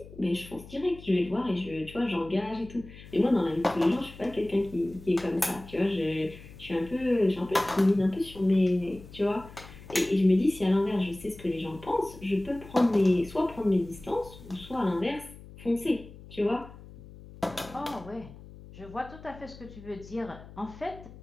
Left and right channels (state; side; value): noise; left; hum, 18 dB below the sound